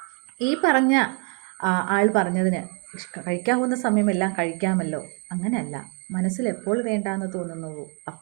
ഈ പറഞ്ഞ ആൾ പറഞ്ഞതിന് കഴിക്കാവുന്ന സമയമെല്ലാം കഴിക്കാമല്ലോ, അങ്ങനെയല്ല. മനസ്സിൽ എപ്പോൾ വേണ്ടാന്ന് തോന്നുന്നുവോ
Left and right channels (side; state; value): left; quieter; 33.7 dB